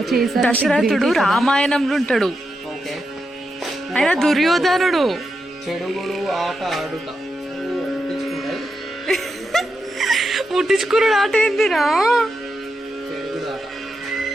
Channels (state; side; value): normal; both; correlation 0.86